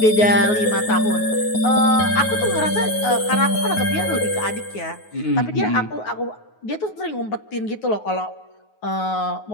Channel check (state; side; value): late; right; 9.4 ms